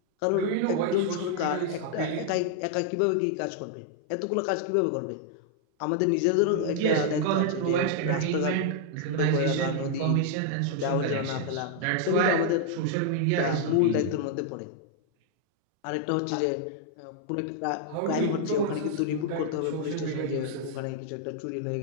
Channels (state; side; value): different; both; correlation -0.01